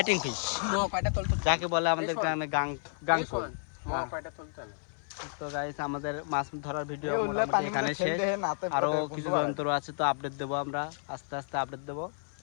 ফিশ কয়টা তোল যাকে বলে আমাদের গ্রামে গাংকল। কয়টা তুলতে না তো গাইস আমাদের মাছ ধরার ভিডিও মোটামুটি এখানে শেষ, আরো কিছু যন্ত্র আছে তো আপডেট দেবো আমরা, আস্তে আস্তে আপডেট দেবো।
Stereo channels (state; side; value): silent; right; 57 dB below the other